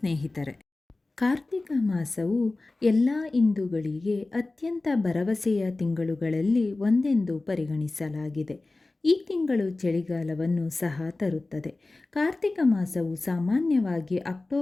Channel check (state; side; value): quieter; right; 3.2 dB